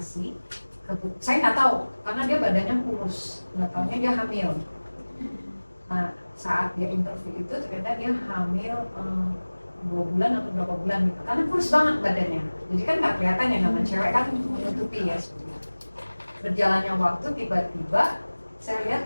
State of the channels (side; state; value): both; inverted; correlation -1.00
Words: Saya nggak tahu karena dia badannya kurus, nggak taunya dia hamil. Nah saat dia interview itu ternyata dia hamil 2 bulan atau berapa bulan gitu, karena kurus banget badannya. Jadi kan nggak kelihatan ya, namanya cewek kan menutupi ya sebenarnya. Berjalannya waktu tiba-tiba saya lihat